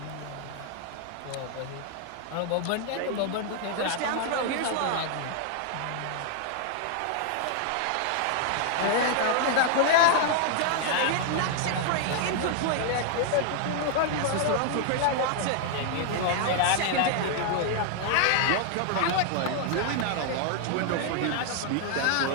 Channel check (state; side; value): different; both; correlation 0.00